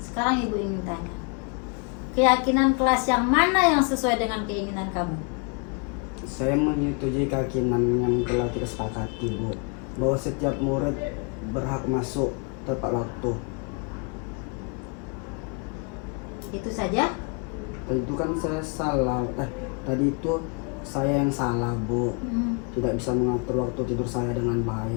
Ibu ingin tanya, keyakinan kelas yang mana yang sesuai dengan keinginan kamu? Saya menyetujui keyakinan yang telah kita sepakati, Bu, bahwa setiap murid berhak masuk tepat waktu. Itu saja? Tadi itu kan saya salah. Tadi itu saya yang salah, Bu. Tidak bisa mengatur waktu tidur saya dengan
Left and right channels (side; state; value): right; quieter; 35.8 dB